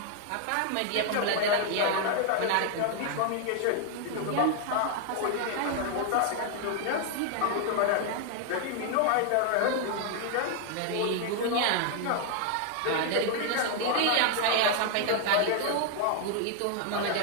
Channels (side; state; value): both; different; correlation 0.00